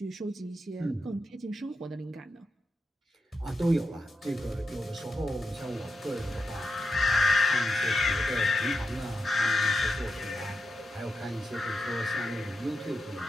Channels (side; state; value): both; normal; correlation 0.88